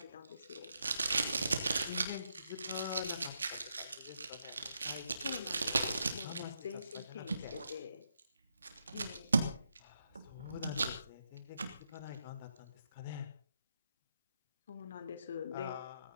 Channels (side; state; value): both; inverted; correlation -0.80